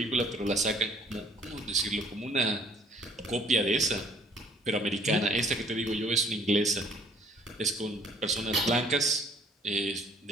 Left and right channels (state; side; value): normal; both; correlation 0.57